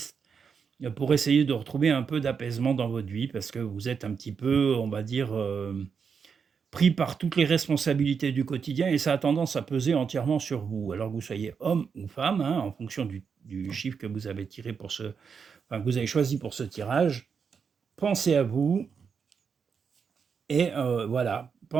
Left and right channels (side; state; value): left; quieter; 6.2 dB